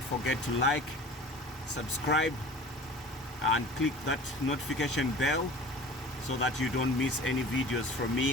forget to like, subscribe, and click that notification bell so that you don't miss any videos from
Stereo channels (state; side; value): normal; both; correlation 0.41